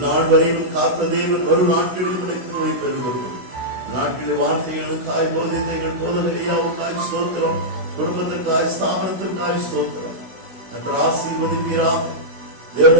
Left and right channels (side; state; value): left; late; 16 ms